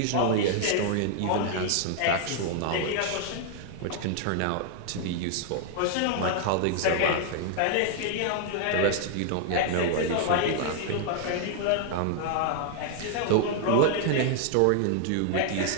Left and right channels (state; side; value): different; both; correlation 0.00